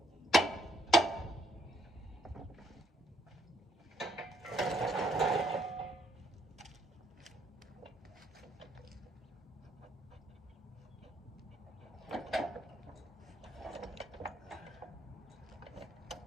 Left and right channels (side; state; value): both; normal; correlation 0.70